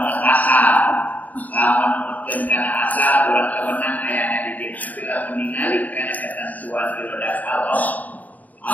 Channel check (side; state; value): right; late; 0.077 ms